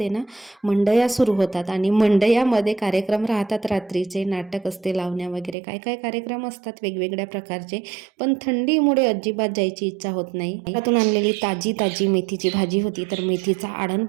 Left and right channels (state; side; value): drops out; left; at 5.6 s